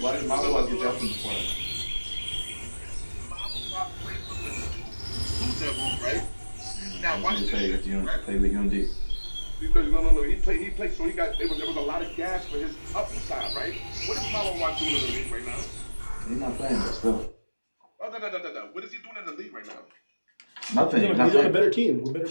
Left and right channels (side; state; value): both; inverted; correlation -1.00